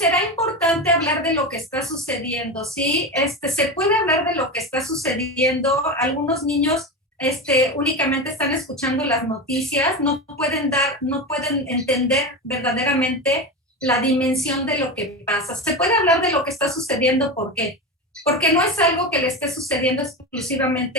importante hablar de lo que está sucediendo, ¿sí? Se puede hablar de lo que está sucediendo. Algunos niños únicamente están escuchando las noticias, no pueden entender verdaderamente la dimensión de lo que pasa. Se puede hablar de lo que está sucediendo, ¿por qué? Porque no es algo que le esté sucediendo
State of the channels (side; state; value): both; normal; correlation 0.21